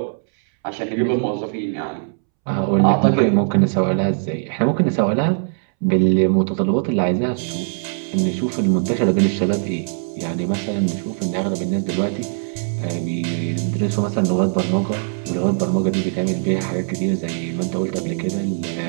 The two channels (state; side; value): silent; left; 65 dB below the other